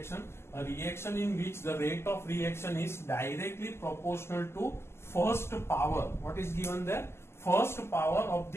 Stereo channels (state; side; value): late; right; 0.12 ms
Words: A reaction in which the rate of reaction is directly proportional to first power. What is given there? First power of